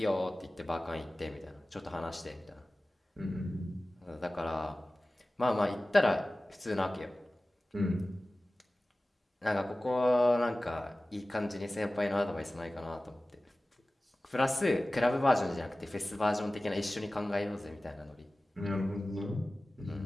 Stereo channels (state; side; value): normal; both; correlation 0.97